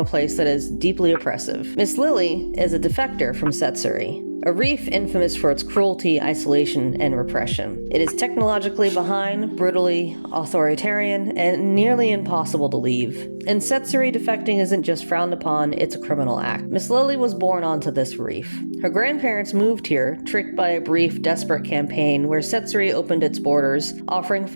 place that is deeply oppressive. Miss Lily is a defector from Setsuri, a reef infamous for its cruelty, isolation, and repression. It is technologically behind, brutally authoritarian, and nearly impossible to leave. In Setsuri, defecting isn't just frowned upon, it's a criminal act. Miss Lily was born onto this reef. Her grandparents moved here, tricked by a brief, desperate campaign where Setsuri opened its borders, offering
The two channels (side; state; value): both; inverted; correlation -1.00